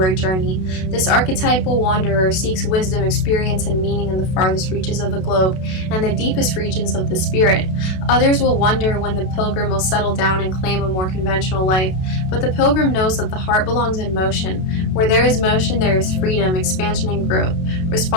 journey. This archetypal wanderer seeks wisdom, experience, and meaning in the farthest reaches of the globe and the deepest regions of the spirit. Others will wonder when the Pilgrim will settle down and claim a more conventional life, but the Pilgrim knows that the heart belongs in motion. Where there is motion, there is freedom, expansion, and growth.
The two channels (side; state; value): right; late; 32 ms